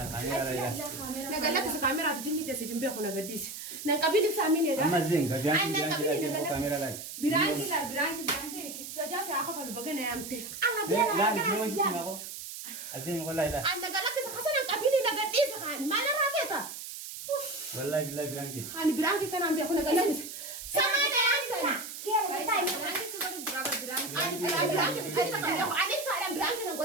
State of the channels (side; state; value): right; noise; hiss, 9 dB below the sound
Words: نقلت الكاميرا في جني تسجن بيه ولا قديس نقبل سامين أما زين كاميرا لا. Biraanki سجاسي أخاف البقنا يا أمتي لا نحن نسمع ما أزين والله لا. أنا قلت خسنا نقبل نقديس خان ما أنا رافيتا والله بالله برانك. أنا برانك كان عم بيأخذ قلت سامعنا يا أنت كيف تايم biraanki sudah berapa biraanki. أنا برانك أنت كان بيأخذ عليك سالم برانك